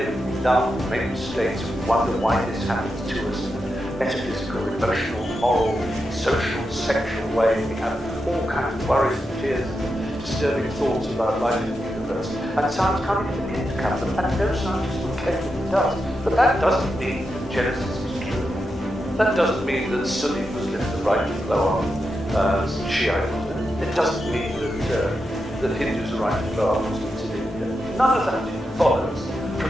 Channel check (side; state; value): both; normal; correlation 0.87